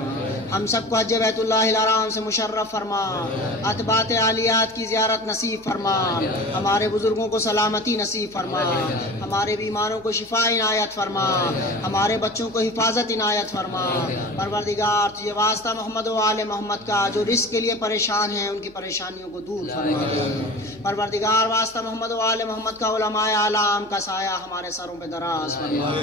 ہم سب کو حج بیت اللہ الحرام سے مشرف فرما، اتباعات عالیات کی زیارت نصیب فرما، ہمارے بزرگوں کو سلامتی نصیب فرما، ہمارے بیماروں کو شفا عنایت فرما، ہمارے بچوں کو حفاظت عنایت فرما۔ پروردگار تجھے واسطہ محمد و آل محمد کا جو رزق کے لیے پریشان ہیں ان کی پریشانیوں کو دور فرما۔ پروردگار واسطہ محمد و آل محمد کا علماء اعلام کا سایہ ہمارے سروں پہ دراز فرما،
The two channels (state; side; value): noise; right; hum, 26 dB below the sound